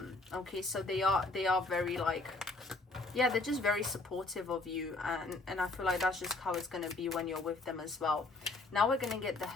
Okay, so they are very, like, yeah, they're just very supportive of you, and I feel like that's just how it's going to be when you're with them as well. Now we're going to get the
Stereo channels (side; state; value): right; quieter; 3.2 dB